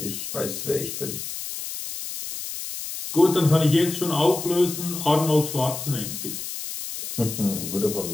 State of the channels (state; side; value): noise; left; hiss, 7 dB below the sound